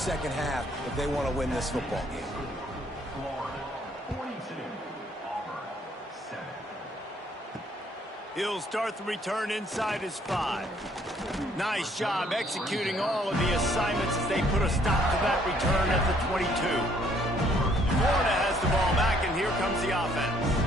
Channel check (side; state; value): both; normal; correlation 0.65